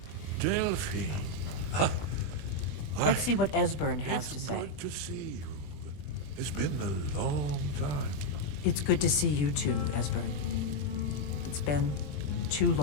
Delphine. Let's see what Esbern has to say. Good to see you. It's been a long time. It's good to see you too, Esbern. It's been too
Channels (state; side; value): late; right; 20 ms